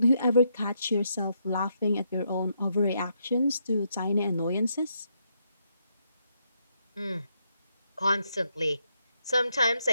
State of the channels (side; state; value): both; inverted; correlation -0.78